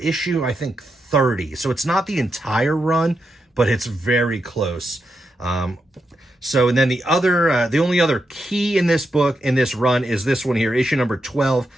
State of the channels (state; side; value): normal; both; correlation 0.85